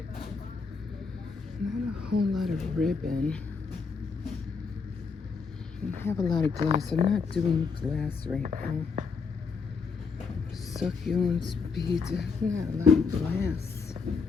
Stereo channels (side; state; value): right; quieter; 5.1 dB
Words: Not a whole lot of ribbon. I have a lot of glass. I'm not doing glass right now. Succulents, beads. Not a lot of glass.